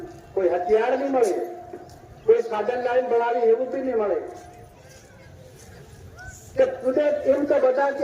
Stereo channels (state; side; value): identical; both; correlation 1.00